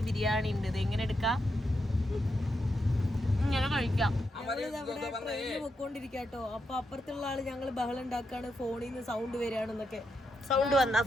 ബിരിയാണി ഉണ്ട്, ഇത് എങ്ങനെ എടുക്കാം, ഇങ്ങനെ കഴിക്കാം. പൊക്കോണ്ടിരിക്കാട്ടോ. അപ്പൊ അപ്പുറത്തുള്ള ആള് ഞങ്ങൾ ബഹളം ഉണ്ടാക്കാണ്, ഫോണിൽ നിന്ന് സൗണ്ട് വരികയാണെന്നൊക്കെ. സൗണ്ട് വന്ന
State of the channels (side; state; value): both; normal; correlation 0.84